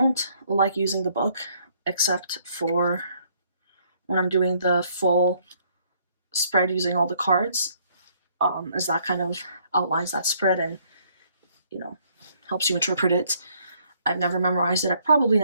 like using the book except for when I'm doing the full spread using all the cards, as that kind of outlines that spread and, you know, helps you interpret it. I've never memorized it. I probably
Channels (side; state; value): both; inverted; correlation -0.66